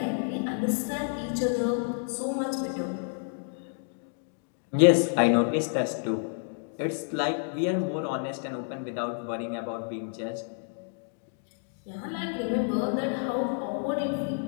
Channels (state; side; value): silent; right; 58 dB below the other